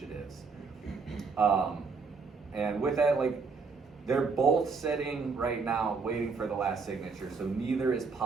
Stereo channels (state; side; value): quieter; left; 4.8 dB